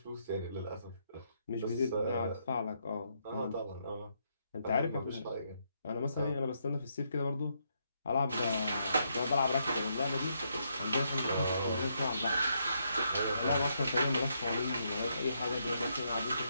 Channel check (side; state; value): both; inverted; correlation -0.77